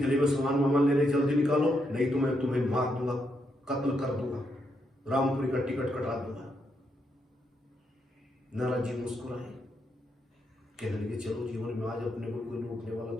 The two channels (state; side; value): normal; both; correlation 0.80